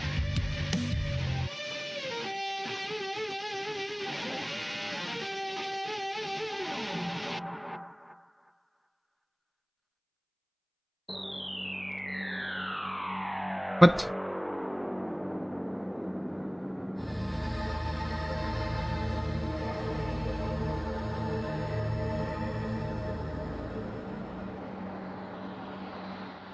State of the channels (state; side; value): identical; both; correlation 1.00